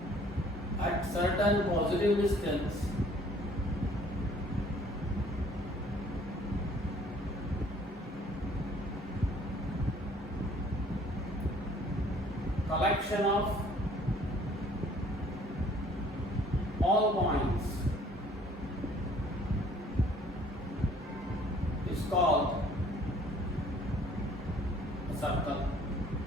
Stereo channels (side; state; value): both; normal; correlation 0.57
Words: at certain positive distance, collection of all points is called a circle.